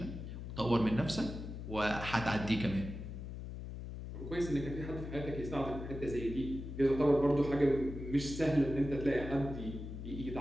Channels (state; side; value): noise; left; hum, 8 dB below the sound